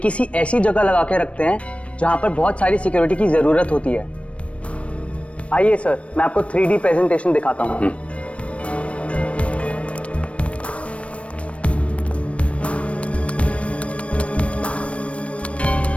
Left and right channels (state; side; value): late; right; 0.062 ms